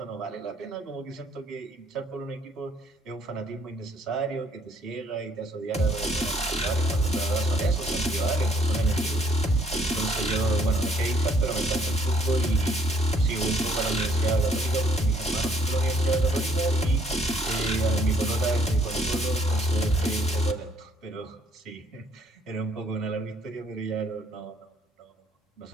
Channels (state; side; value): normal; both; correlation 0.64